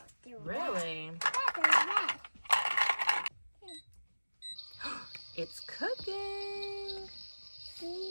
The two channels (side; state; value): both; inverted; correlation -1.00